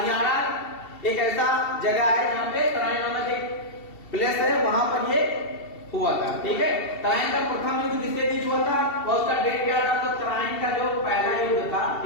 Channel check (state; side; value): late; right; 2.7 ms